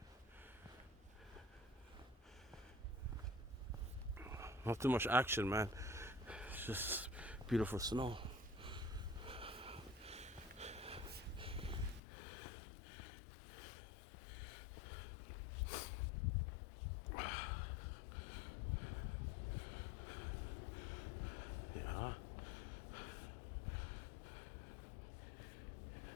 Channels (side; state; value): right; drops out; at 12.0 s